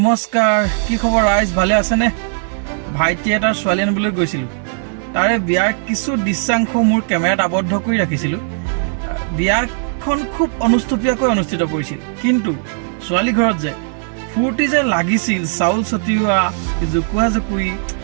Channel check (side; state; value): left; silent; digital silence